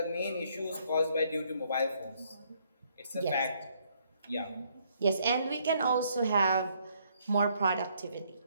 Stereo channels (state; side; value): inverted; both; correlation -0.68